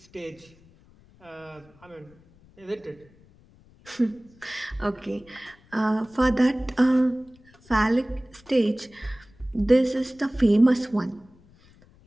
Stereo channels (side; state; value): left; noise; rumble, 28 dB below the sound